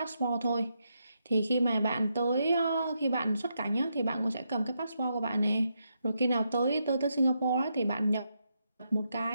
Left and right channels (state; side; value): inverted; both; correlation -0.81